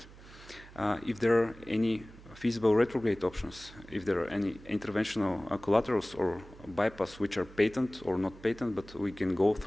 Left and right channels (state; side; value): noise; right; hum, 20 dB below the sound